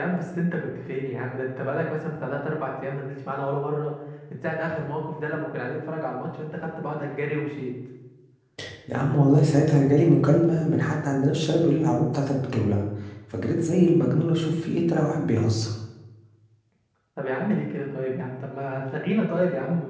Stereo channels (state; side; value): identical; both; correlation 1.00